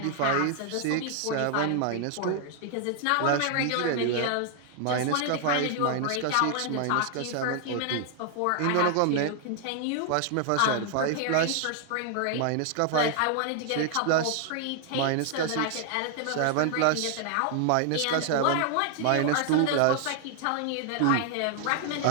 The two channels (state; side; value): different; both; correlation 0.00